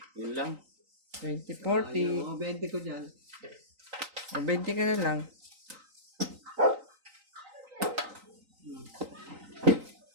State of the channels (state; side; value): late; left; 3.9 ms